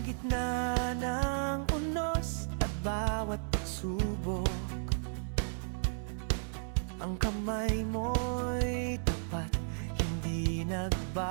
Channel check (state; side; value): silent; left; 55 dB below the other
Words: gitna ng unos at bawat pagsubok, ang kamay mo'y tapat, hindi nagbabago.